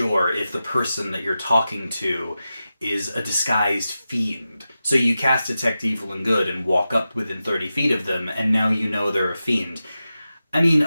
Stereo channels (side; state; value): both; inverted; correlation -0.92